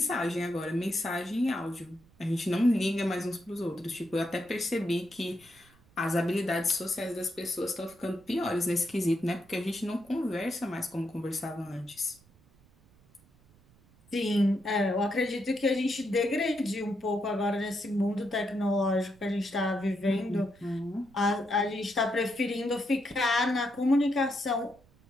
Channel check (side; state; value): right; noise; rumble, 29 dB below the sound